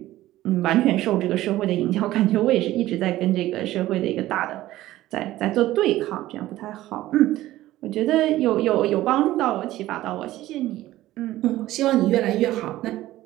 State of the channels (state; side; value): quieter; left; 15.5 dB